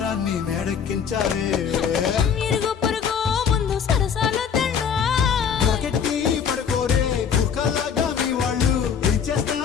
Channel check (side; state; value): right; quieter; 7.3 dB